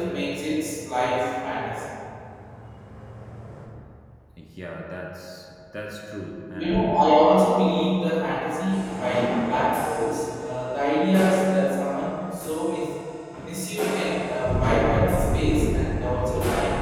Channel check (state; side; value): identical; both; correlation 1.00